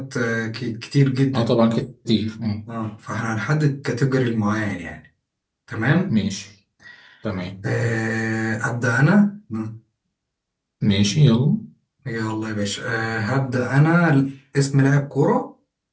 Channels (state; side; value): identical; both; correlation 1.00